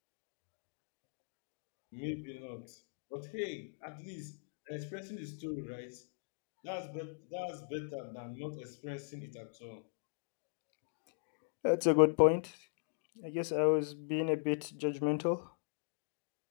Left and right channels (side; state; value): right; silent; digital silence